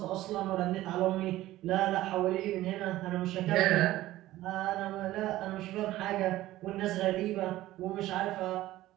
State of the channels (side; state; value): left; quieter; 15.7 dB